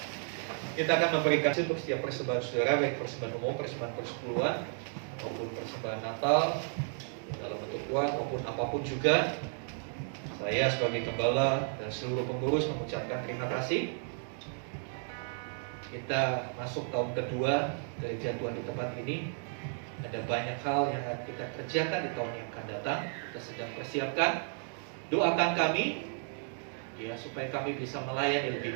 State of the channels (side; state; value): left; silent; 56 dB below the other